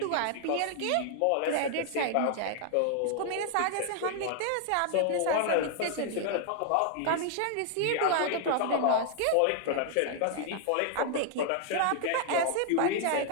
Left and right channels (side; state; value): both; different; correlation 0.00